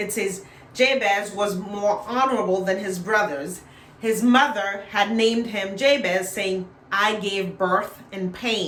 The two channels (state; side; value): identical; both; correlation 1.00